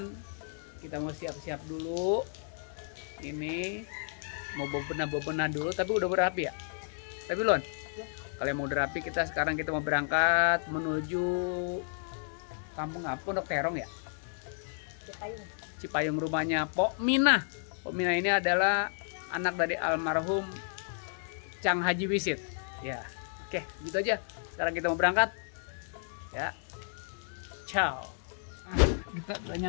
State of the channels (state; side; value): silent; right; digital silence